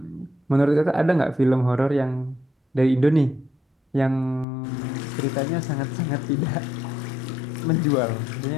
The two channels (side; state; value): right; drops out; at 4.5 s